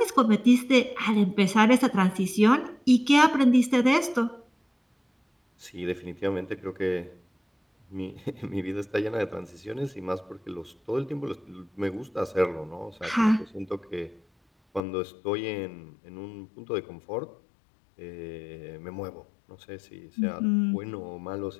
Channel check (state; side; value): drops out; right; at 14.8 s